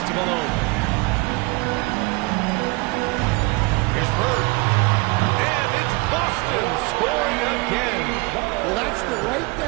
to Malone. Here's Bird. And it's Boston scoring again. Well, that's the right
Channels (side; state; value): left; quieter; 26.4 dB